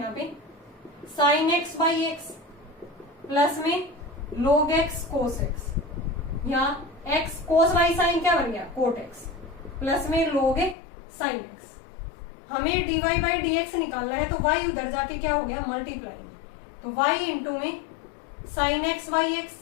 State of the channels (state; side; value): drops out; right; at 10.8 s